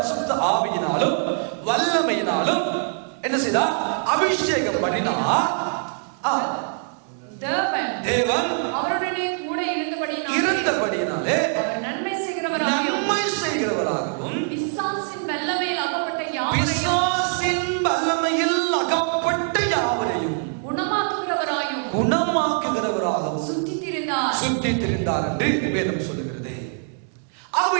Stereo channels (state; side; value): silent; left; 56 dB below the other